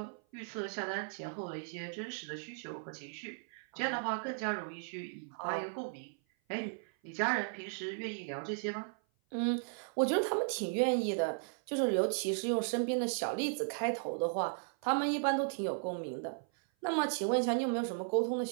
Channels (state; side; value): silent; left; 54 dB below the other